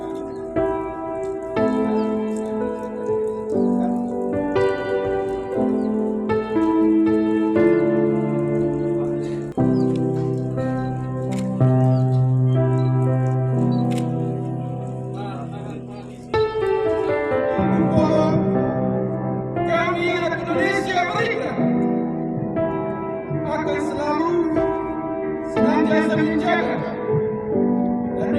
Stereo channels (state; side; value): identical; both; correlation 1.00